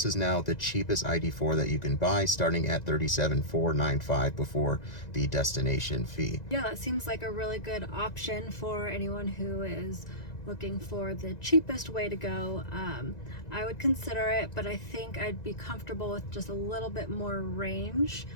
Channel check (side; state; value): right; late; 1.9 ms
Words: is now the cheapest ID.4 that you can buy, starting at $37,495 before the destination fee. Yeah, that seems like a really good option for anyone who is looking for the cheapest way to go. I would consider it, but I think I'd be comfortable with just a little bit more range